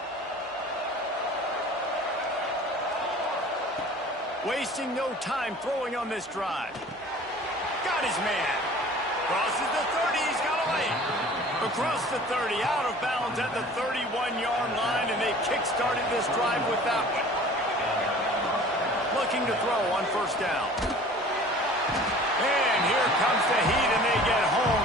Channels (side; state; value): both; normal; correlation 0.46